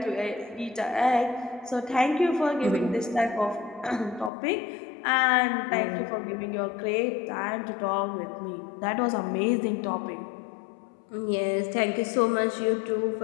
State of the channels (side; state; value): right; drops out; at 4.3 s